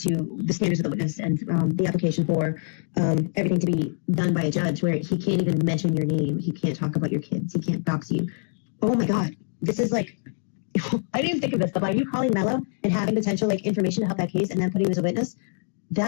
the standards of the witness and the application for everything to be done by a judge, where he can't even mention your name, he can't talk about your kids, he can't dox you. Oh my God, this is like, I didn't even think of this, but by you calling Mello and having potential like information to help that case and then putting him as a witness,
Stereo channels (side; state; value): right; silent; digital silence